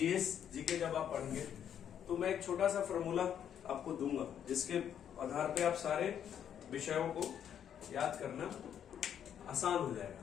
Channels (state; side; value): quieter; right; 9.2 dB